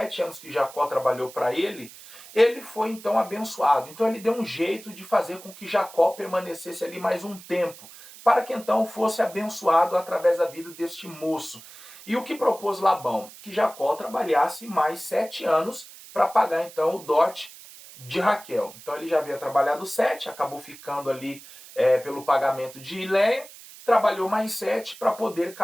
anos que Jacó trabalhou para ele, ele foi então abençoado. Então ele deu um jeito de fazer com que Jacó permanecesse ali mais um tempo, para que então fosse abençoado através da vida deste moço. E o que propôs Labão? Que Jacó trabalhasse mais 7 anos para pagar então o dote de Raquel. Então ele já havia trabalhado 7, acabou ficando ali pelo pagamento de Leia, trabalhou mais 7 para poder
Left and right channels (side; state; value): right; noise; hiss, 18 dB below the sound